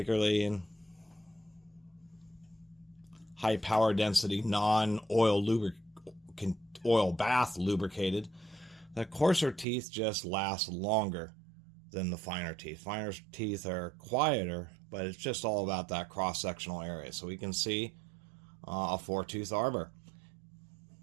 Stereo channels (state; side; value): drops out; left; at 9.7 s